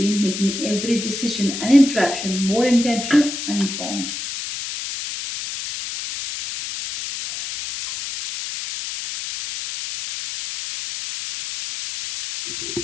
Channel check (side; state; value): left; noise; hiss, 6 dB below the sound